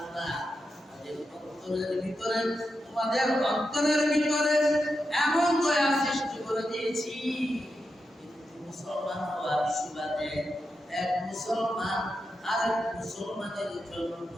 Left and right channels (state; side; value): normal; both; correlation 0.87